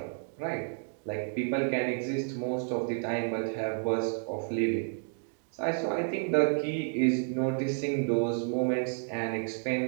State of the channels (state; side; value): silent; left; 57 dB below the other